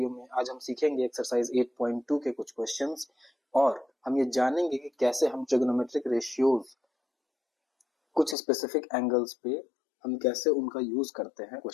में, आज हम सीखेंगे एक्सरसाइज 8.2 के कुछ क्वेश्चंस और हम ये जानेंगे कि कैसे हम ट्रिग्नोमेट्रिक रेशियोज कुछ स्पेसिफिक एंगल्स पे हम कैसे उनका यूज करते हैं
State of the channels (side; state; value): right; drops out; at 8.3 s